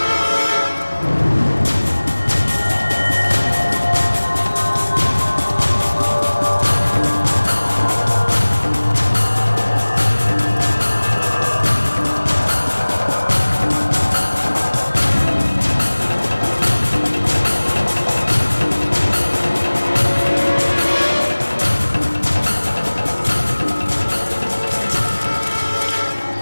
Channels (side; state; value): both; inverted; correlation -1.00